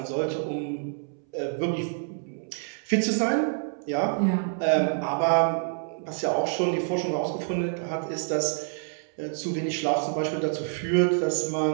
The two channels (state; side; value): silent; left; 60 dB below the other